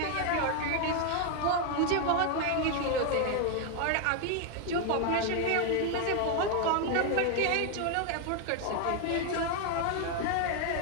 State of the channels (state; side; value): different; both; correlation 0.00